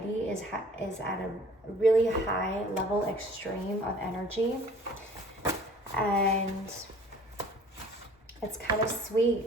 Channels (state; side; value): normal; both; correlation 0.50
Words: is at a really high level, extreme of energy, and it's kind of